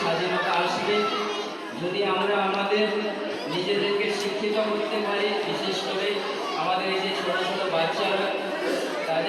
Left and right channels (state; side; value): identical; both; correlation 1.00